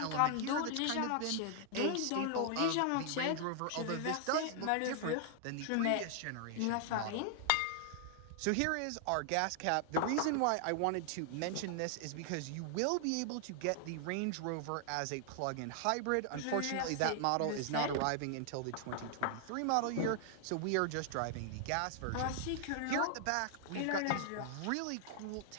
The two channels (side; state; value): both; different; correlation 0.00